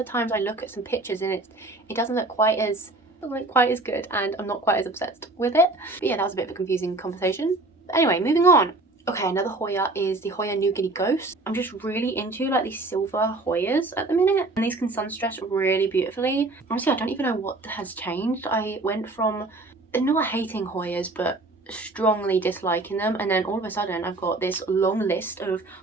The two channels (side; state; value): left; quieter; 3.0 dB